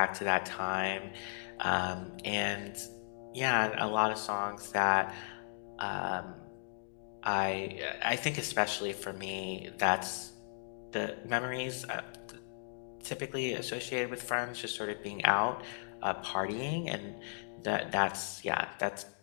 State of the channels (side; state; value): right; silent; digital silence